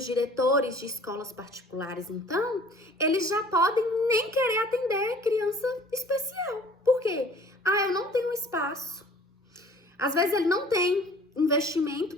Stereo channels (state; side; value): normal; both; correlation 0.50